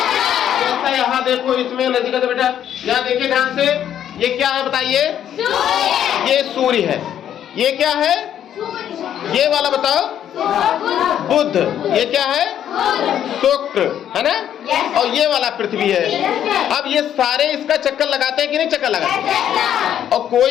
यहाँ देखो, इसमें नजदीक से बेटा, यहाँ देखिए ध्यान से, ये क्या है बताइए? ये सूर्य है। ये क्या है? ये वाला बताओ, बुध। ये क्या है? शुक्र, है ना? और ये वाला पृथ्वी है। अब ये सारे इसका चक्कर लगाते हैं कि नहीं चक्कर लगाते? और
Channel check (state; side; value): quieter; right; 10.2 dB